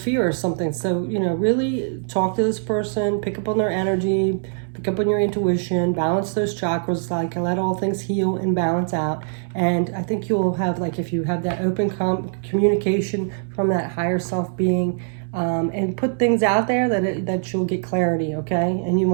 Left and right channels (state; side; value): silent; left; 64 dB below the other